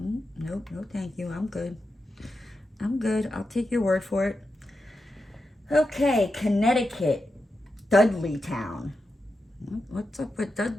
no thank you, I'm good. I'll take your word for it. Okay, Connecticut, Dudleytown. What's up with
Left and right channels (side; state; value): both; normal; correlation 0.88